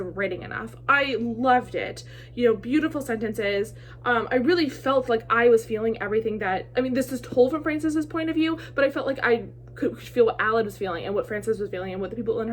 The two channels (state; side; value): identical; both; correlation 1.00